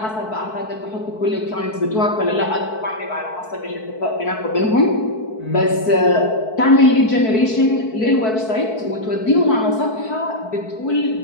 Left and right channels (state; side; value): late; right; 4.6 ms